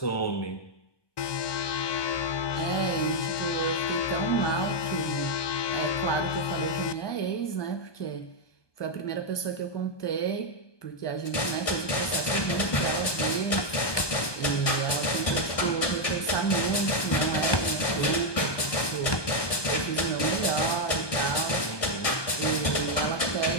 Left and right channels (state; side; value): late; right; 1.2 ms